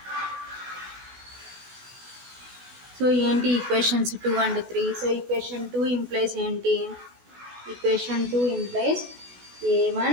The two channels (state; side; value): late; left; 16 ms